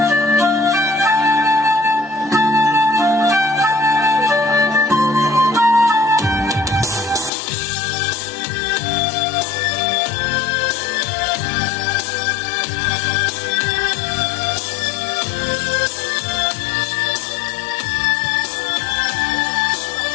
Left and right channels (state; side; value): drops out; right; at 7.3 s